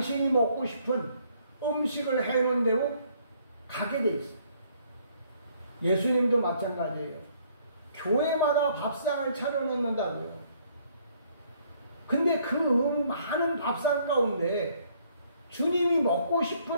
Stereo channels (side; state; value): both; inverted; correlation -0.65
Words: 먹고 싶은 음식을 해놓은 대로 가게 돼 있어요. 예수님도 마찬가지예요. 교회마다 밥상을 차려놓는다고요. 근데 그 많은 밥상 가운데 주님이 먹고 싶은